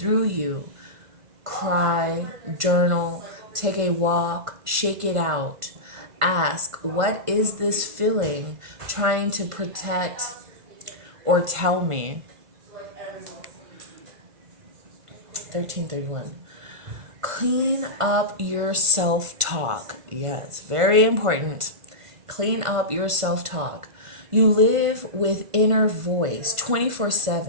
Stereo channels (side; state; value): left; late; 1.5 ms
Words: you. Cry, journal, take a walk, shake it out. Ask, what is this feeling trying to protect or tell me? 1331. Clean up your self-talk. Yes, very important. Clean up your self-talk. You live with inner voice